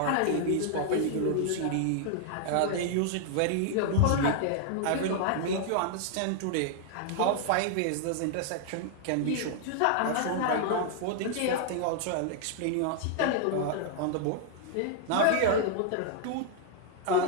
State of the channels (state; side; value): different; both; correlation 0.00